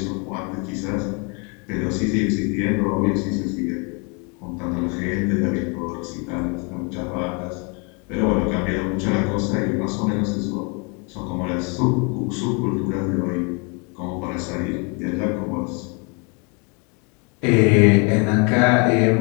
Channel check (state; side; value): quieter; right; 33.6 dB